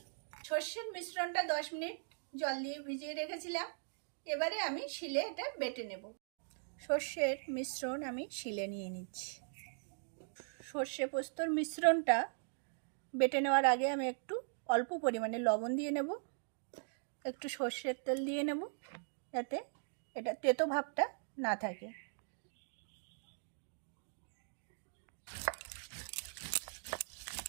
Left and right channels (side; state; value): left; silent; digital silence